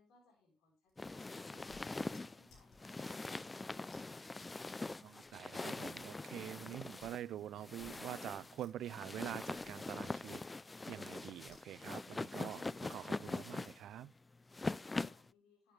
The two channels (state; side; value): normal; both; correlation 0.83